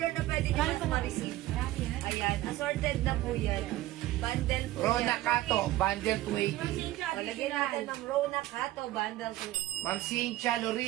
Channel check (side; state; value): left; quieter; 16.1 dB